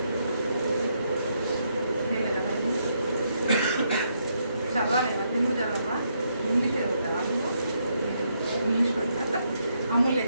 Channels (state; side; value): inverted; both; correlation -0.77